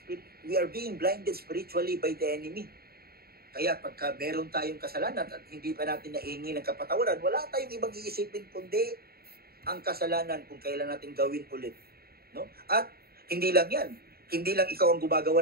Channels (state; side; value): late; left; 0.45 ms